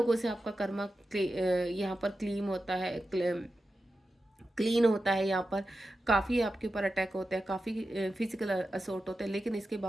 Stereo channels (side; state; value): both; normal; correlation 0.91